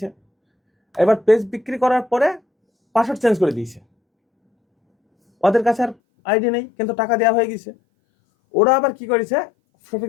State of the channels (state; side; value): drops out; right; at 6.0 s